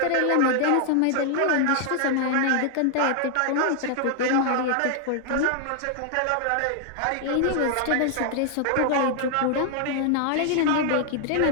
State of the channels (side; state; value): both; different; correlation 0.00